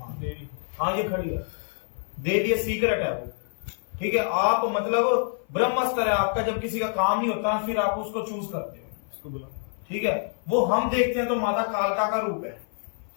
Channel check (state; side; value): silent; right; 55 dB below the other